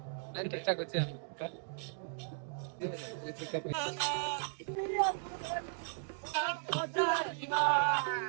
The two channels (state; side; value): silent; left; digital silence